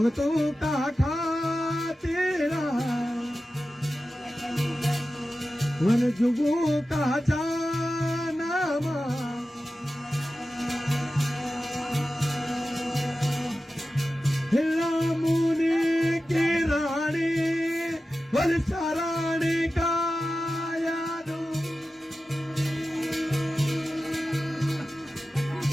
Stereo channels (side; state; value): both; normal; correlation 0.94